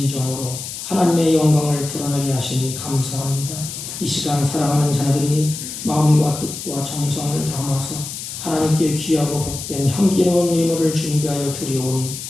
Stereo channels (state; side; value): noise; left; hiss, 8 dB below the sound